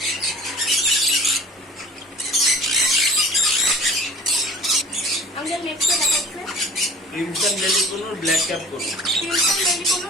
আমাদের নেক্সট দেখাচ্ছে ক্রিমসন বেলি কোনোর ব্ল্যাক ক্যাপ করুন। ক্রিমসন বেলি কোনো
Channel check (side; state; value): both; normal; correlation 0.46